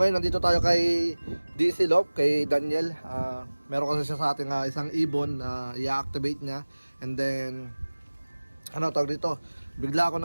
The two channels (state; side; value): inverted; both; correlation -1.00